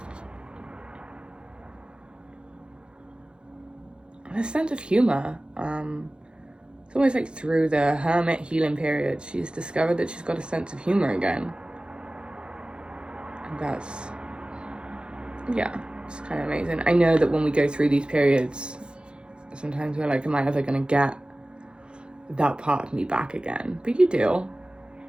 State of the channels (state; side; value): late; left; 0.053 ms